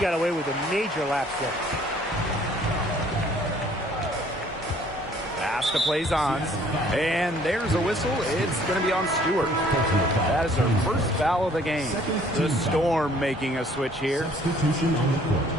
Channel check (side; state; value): both; normal; correlation 0.58